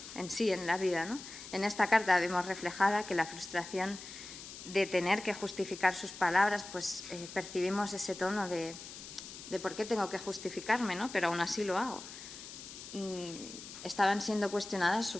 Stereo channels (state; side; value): noise; left; hiss, 13 dB below the sound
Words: en sí, en la vida, ¿no? En esta carta vemos reflejada que la frustración de tener que justificar sus palabras, pues percibimos ese tono de por qué tengo que justificarme, ¿no? Pero aún así lo hago. Estaban siendo cuestionadas su